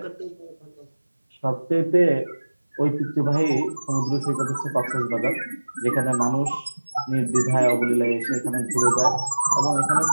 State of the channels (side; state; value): both; inverted; correlation -1.00